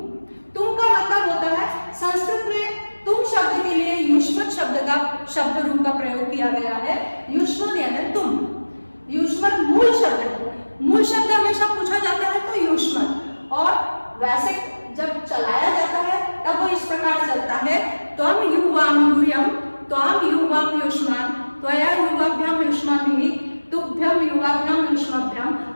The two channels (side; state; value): both; inverted; correlation -1.00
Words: का मतलब होता है, संस्कृत में तुम शब्द के लिए युष्मत शब्द का शब्द रूप का प्रयोग किया गया है। युष्मत यानी तुम, युष्मत मूल शब्द है। मूल शब्द हमेशा पूछा जाता है तो युष्मत, और वैसे जब चलाया जाता है तब वो इस प्रकार चलता है, त्वम युवाम यूयम, त्वम युवाम युष्मान, त्वया युवाभ्याम युष्माभिः, तुभ्यम युवाभ्याम युष्माभ्याम,